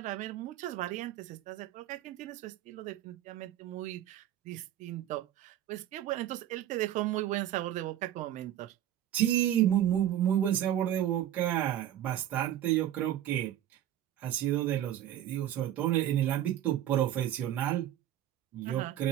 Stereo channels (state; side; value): quieter; left; 11.9 dB